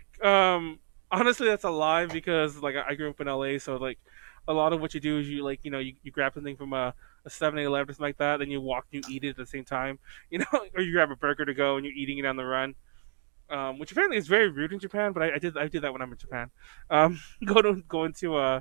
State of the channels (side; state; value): left; silent; 58 dB below the other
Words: honestly, that's a lie because, like, I grew up in LA, so, like, a lot of what you do is you, like, you grab something from a 7-Eleven or something like that, then you walk and you eat it at the same time, or you grab a burger to go and you're eating it on the run. Which apparently is very rude in Japan, but I did that when I'm in Japan. Go into